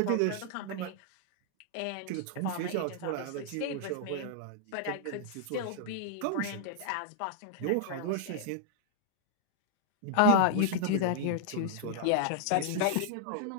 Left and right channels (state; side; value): different; both; correlation -0.01